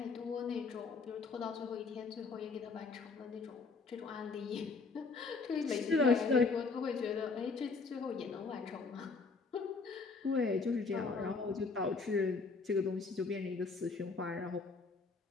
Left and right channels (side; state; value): right; quieter; 4.3 dB